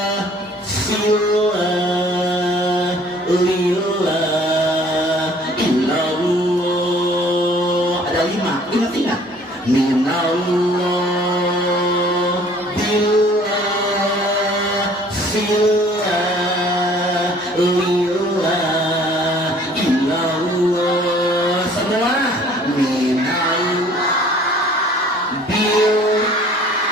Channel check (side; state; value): both; normal; correlation 0.54